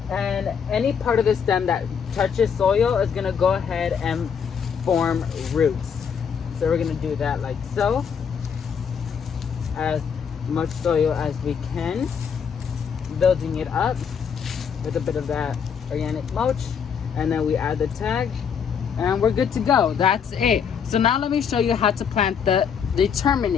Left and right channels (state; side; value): quieter; right; 7.0 dB